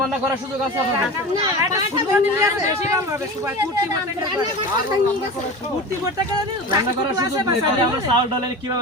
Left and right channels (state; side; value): normal; both; correlation 0.30